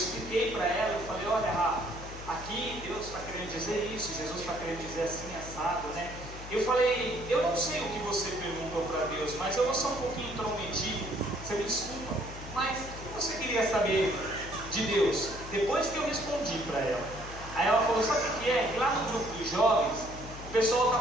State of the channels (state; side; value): noise; left; hum, 12 dB below the sound